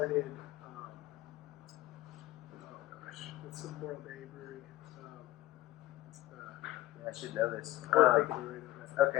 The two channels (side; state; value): right; quieter; 15.7 dB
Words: It's the Morro Bay Brewery. I should know this. Morro Bay Brewery.